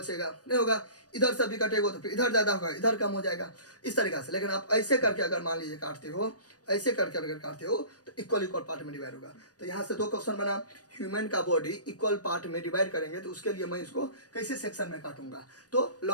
नहीं होगा। इधर से भी कटेगा तो फिर इधर ज़्यादा होगा, इधर कम हो जाएगा, इस तरीक़ा से। लेकिन आप ऐसे करके अगर मान लीजिए काटते हो, ऐसे करके अगर काटते हो तो इक्वल इक्वल पार्ट में डिवाइड होगा। तो यहाँ से दो क्वेश्चन बना, ह्यूमन का बॉडी इक्वल पार्ट में डिवाइड करेंगे तो उसके लिए मैं इसको कैसे सेक्शन में काटूंगा? तो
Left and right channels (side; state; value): right; late; 0.68 ms